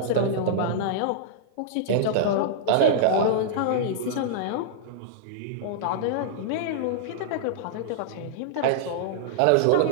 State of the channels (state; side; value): different; both; correlation -0.02